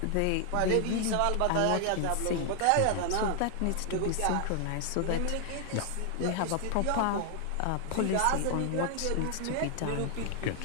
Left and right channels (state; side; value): different; both; correlation 0.00